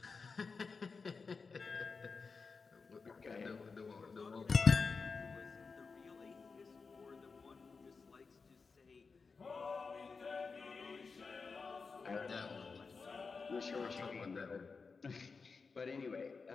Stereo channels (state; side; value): quieter; right; 4.7 dB